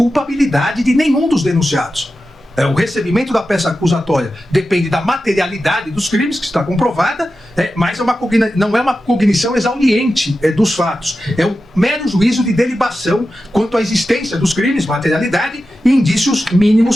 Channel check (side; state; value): both; normal; correlation 0.92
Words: de nenhum dos denunciados. O recebimento da peça acusatória depende da materialidade dos crimes, que está comprovada, mas não é uma cognição exauriente dos fatos. É um mero juízo de delibação quanto à existência dos crimes, materialidade e indícios